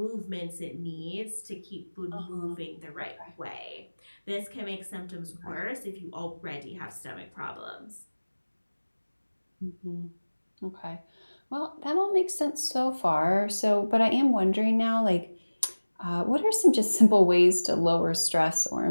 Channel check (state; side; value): inverted; both; correlation -1.00